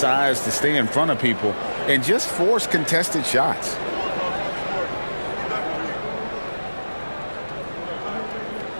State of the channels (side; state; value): both; inverted; correlation -1.00